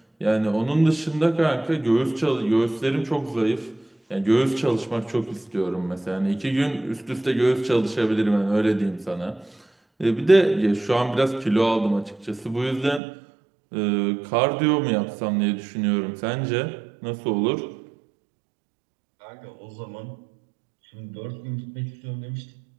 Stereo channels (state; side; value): drops out; left; at 13.0 s